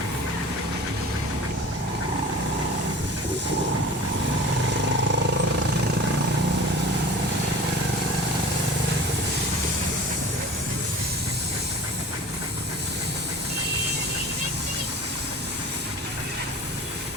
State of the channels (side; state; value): both; normal; correlation 0.40